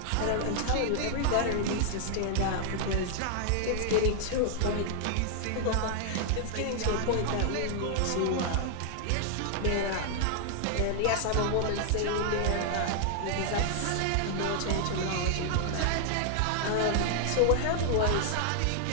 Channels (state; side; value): different; both; correlation 0.00